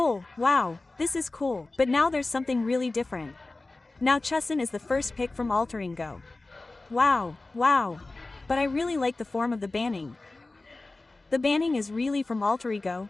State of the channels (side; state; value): right; quieter; 3.2 dB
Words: wow, this is cool. But now there's something really different. Now Chusin is the first pick from alterego. Wow, wow. But I really like the form of the banning. The banning is really from alterego,